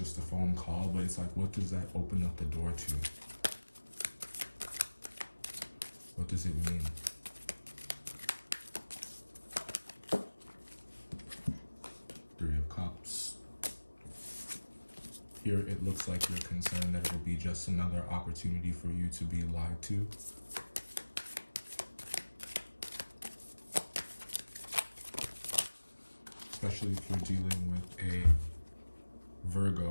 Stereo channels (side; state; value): both; inverted; correlation -1.00